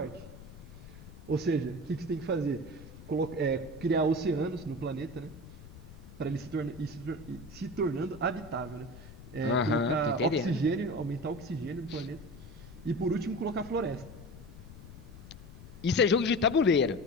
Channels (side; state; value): left; noise; rumble, 16 dB below the sound